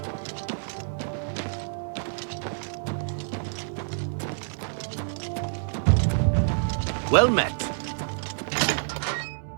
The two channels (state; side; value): silent; left; 60 dB below the other